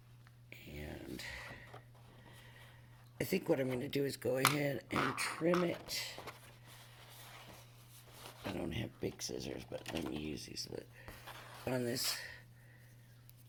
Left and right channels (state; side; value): identical; both; correlation 1.00